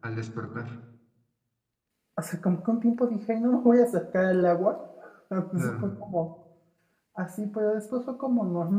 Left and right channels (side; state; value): both; identical; correlation 1.00